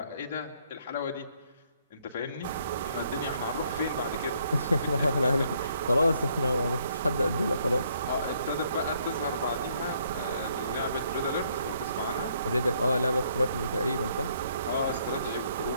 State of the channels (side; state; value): both; inverted; correlation -0.69